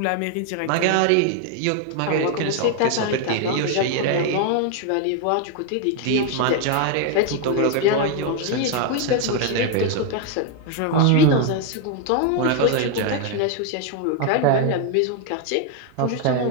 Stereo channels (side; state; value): both; different; correlation 0.01